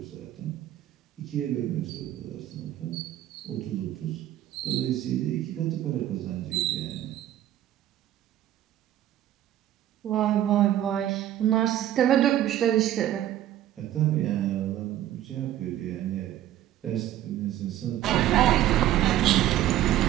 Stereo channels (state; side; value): quieter; left; 12.7 dB